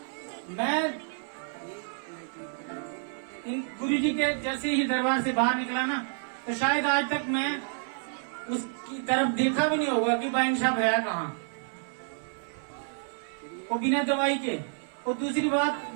मैं इन गुरु जी के जैसे ही दरबार से बाहर निकला ना, तो शायद आज तक मैं उसकी तरफ देखा भी नहीं होगा कि भाई साहब है कहाँ, वो बिना दवाई के। और दूसरी बात,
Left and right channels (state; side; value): silent; left; 57 dB below the other